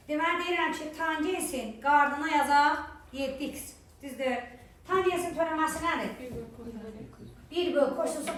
Deməli deyirəm ki, tangensin qardına yazaq 7x. Düzdür. Tangensin törəməsi nədir? 1/kosinüsün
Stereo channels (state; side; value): identical; both; correlation 1.00